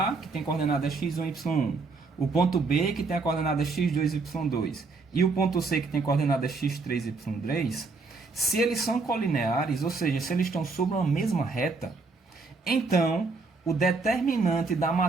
que tem coordenada x1, y1, o ponto B, que tem a coordenada x2, y2, e o ponto C, que tem coordenada x3, y3, se eles são colineares, ou seja, se eles estão sobre uma mesma reta, então o determinante da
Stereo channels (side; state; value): left; quieter; 4.0 dB